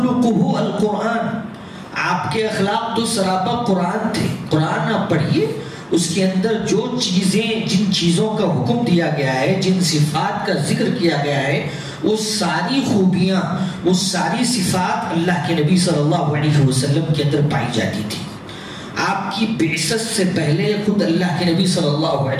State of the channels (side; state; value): both; identical; correlation 1.00